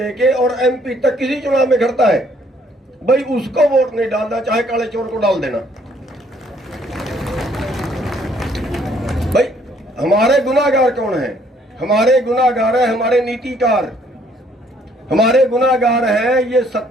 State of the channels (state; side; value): normal; both; correlation 0.64